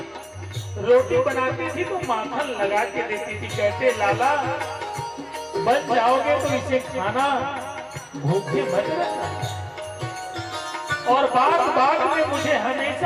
रोटी बनाती थी तो माखन लगा के देती थी। कहते लाला बन जाओगे तो इसे खाना, भूखे मत रहना। और बात बात में मुझे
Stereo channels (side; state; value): both; identical; correlation 1.00